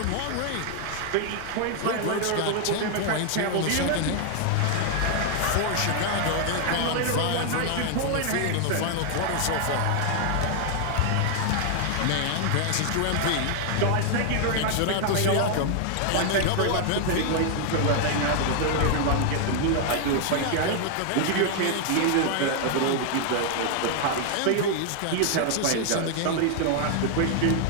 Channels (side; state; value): both; different; correlation 0.00